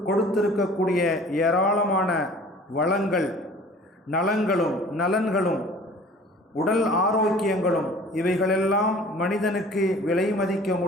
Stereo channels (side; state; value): both; normal; correlation 0.47